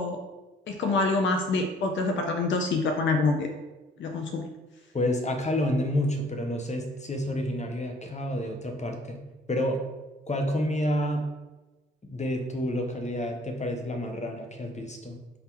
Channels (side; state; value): both; normal; correlation 0.57